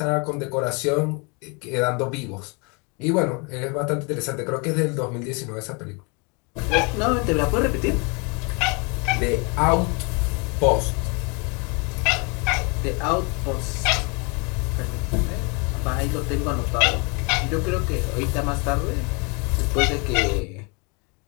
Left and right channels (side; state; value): right; quieter; 32.1 dB